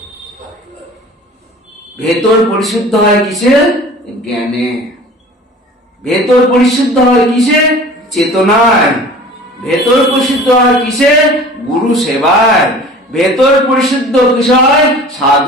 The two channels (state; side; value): normal; both; correlation 0.43